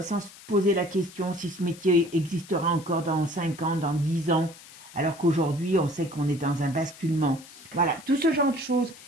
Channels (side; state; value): left; noise; hiss, 19 dB below the sound